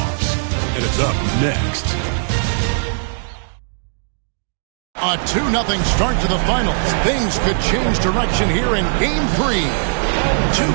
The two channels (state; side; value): silent; left; digital silence